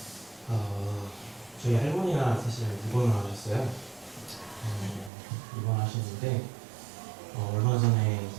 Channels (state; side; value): drops out; left; at 5.1 s